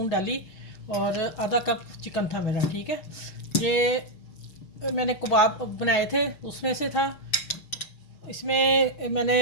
डाली और आधा कप चिकन था मेरा। ठीक है, ये मैंने कबाब बनाए थे उसमें से था। इसमें मैंने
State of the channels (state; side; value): late; right; 6.5 ms